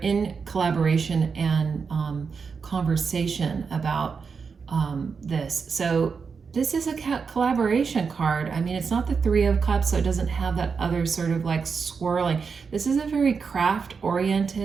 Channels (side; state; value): left; quieter; 5.5 dB